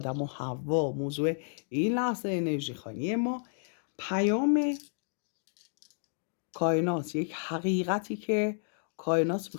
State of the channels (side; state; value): right; silent; digital silence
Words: و حوا. موضوع این لحظه انرژی خوانی ما پیام کائنات، یک حقیقتی که کائنات